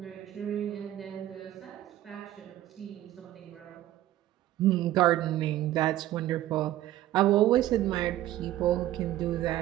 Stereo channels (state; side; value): quieter; left; 13.9 dB